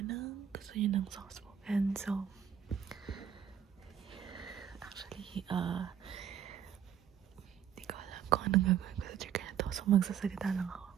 ng gusto niyo ng soft spoken. So, actually, di ko alam kung anong gagawin ko sa trigger na to. So, magsasalita lang ako.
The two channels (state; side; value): quieter; left; 8.9 dB